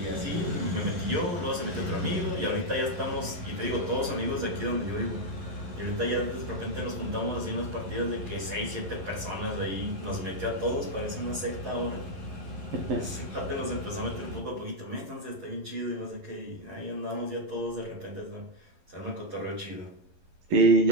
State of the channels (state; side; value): late; left; 11 ms